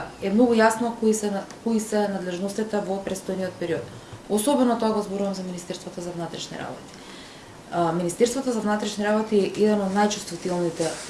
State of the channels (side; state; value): both; identical; correlation 1.00